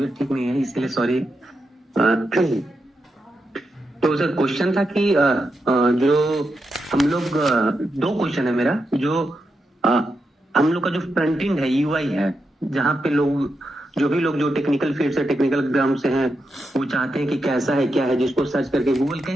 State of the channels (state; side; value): normal; both; correlation 0.86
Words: ठीक नहीं है, इसके लिए सॉरी। तो सर क्वेश्चन था कि जो हम लोग दो क्वेश्चन है मेरा, जो हम लोग का जो फ्रंट एंड है यूआई है, जहाँ पे लोग जो भी लोग जो टेक्निकल फील्ड से टेक्निकल ग्राउंड से हैं वो चाहते हैं कि कैसा है क्या है, जिसको सर्च करके गूगल